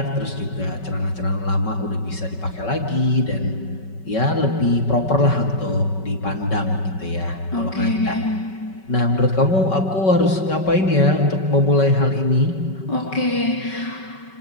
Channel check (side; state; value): right; late; 5.3 ms